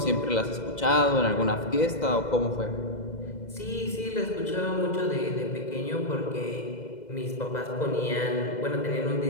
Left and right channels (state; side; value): late; right; 2.0 ms